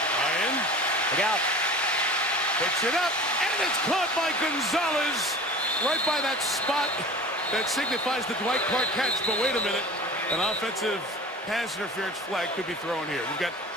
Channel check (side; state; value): both; normal; correlation 0.39